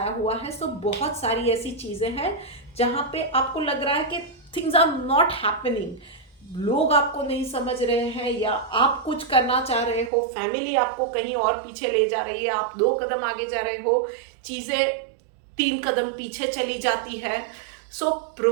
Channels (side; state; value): left; drops out; at 10.1 s